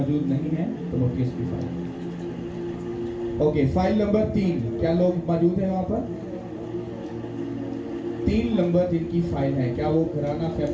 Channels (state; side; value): identical; both; correlation 1.00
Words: नहीं है, तो वो किसकी फाइल? ओके, फाइल नंबर 3 क्या लोग मौजूद है वहां पर? 3 नंबर जिनकी फाइल है, क्या वो घराना